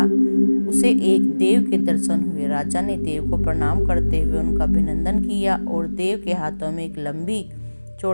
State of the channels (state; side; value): inverted; both; correlation -1.00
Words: उसे एक देव के दर्शन हुए। राजा ने देव को प्रणाम करते हुए उनका अभिनंदन किया और देव के हाथों में एक लंबी